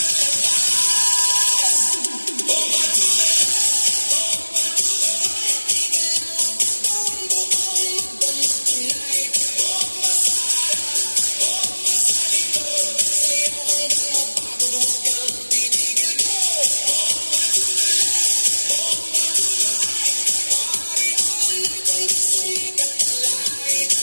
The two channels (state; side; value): inverted; both; correlation -1.00